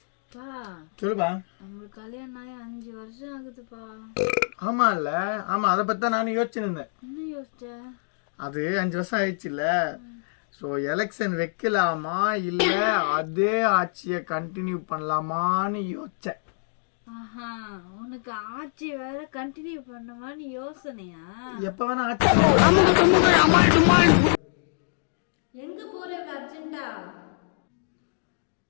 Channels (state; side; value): silent; right; digital silence